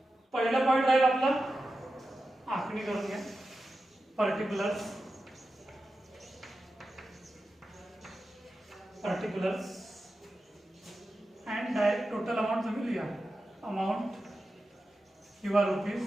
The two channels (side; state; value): both; normal; correlation 0.92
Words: पहिला पॉइंट राहील आपला आखणी करून घ्या. Particulars and direct total amount तुम्ही लिहा. Amount your